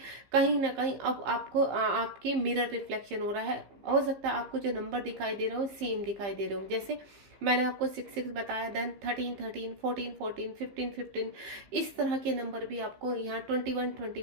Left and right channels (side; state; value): left; late; 15 ms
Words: कहीं ना कहीं अब आपको आपके मिरर रिफ्लेक्शन हो रहा है। हो सकता है आपको जो नंबर दिखाई दे रहे हो सेम दिखाई दे रहे हो, जैसे मैंने आपको 6-6 बताया, देन 13-13, 14-14, 15-15, इस तरह के नंबर भी आपको यहाँ